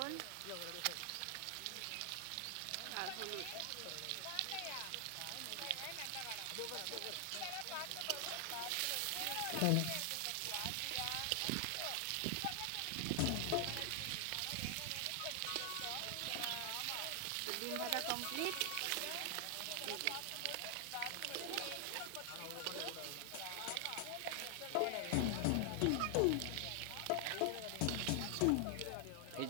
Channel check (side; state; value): both; different; correlation 0.00